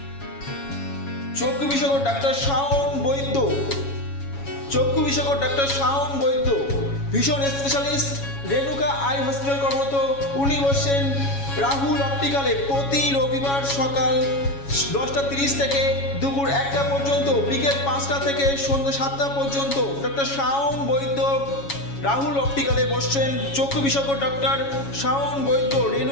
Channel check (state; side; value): late; right; 7.2 ms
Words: চক্ষু বিশেষজ্ঞ ডাক্তার শাওন বৈদ্য। চক্ষু বিশেষজ্ঞ doctor Shaon Baidya, vision specialist, Renuka eye hospital কর্মরত। উনি বসছেন রাহুল অপটিক্যালে প্রতি রবিবার সকাল 10:30 থেকে দুপুর 1টা পর্যন্ত, বিকেল 5টা থেকে সন্ধ্যে 7টা পর্যন্ত। ডক্টর শাওন বৈদ্য রাহুল অপটিক্যালে বসছেন। চক্ষু বিশেষজ্ঞ ডক্টর শাওন বৈদ্য,